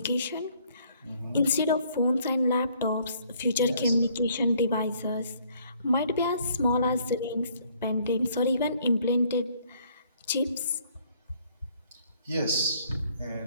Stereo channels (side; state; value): both; inverted; correlation -0.63